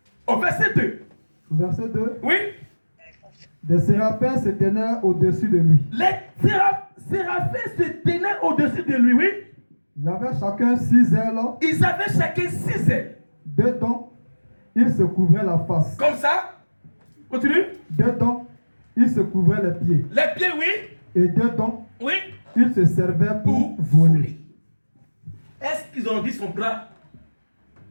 Au verset 2. Au verset 2, Oui? des séraphins se tenaient au-dessus de lui. Les séraphins se tenaient au-dessus de lui, oui? Ils avaient chacun 6 ailes. Ils avaient chacun 6 ailes. Dedans, il se couvrait la face. Comme ça. Continue. Dedans, il se couvrait les pieds. Les pieds, oui? Et dedans, Oui? il se servait pour Pour voler. voler. Est-ce qu'ils ont dit son bras?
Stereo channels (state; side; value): inverted; both; correlation -1.00